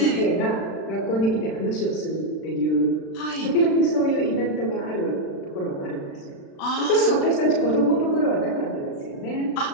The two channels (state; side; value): late; right; 36 ms